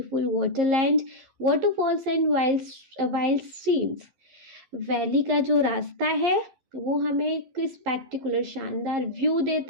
waterland, waterfalls and wild streams. Valley का जो रास्ता है वो हमें एक स्पेक्टिकुलर शानदार व्यू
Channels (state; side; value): late; left; 11 ms